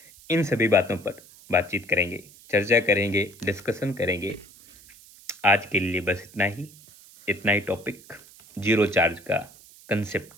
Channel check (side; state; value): right; noise; hiss, 23 dB below the sound